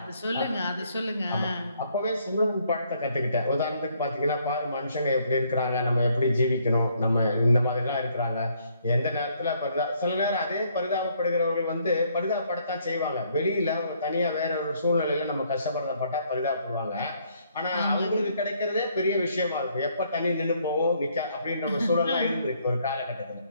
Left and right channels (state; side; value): inverted; both; correlation -0.68